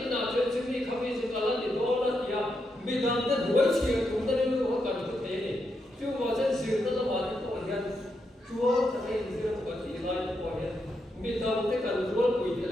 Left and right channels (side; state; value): both; normal; correlation 0.82